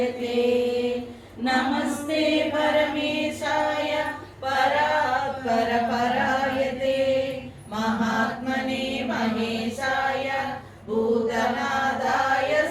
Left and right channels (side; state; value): both; identical; correlation 1.00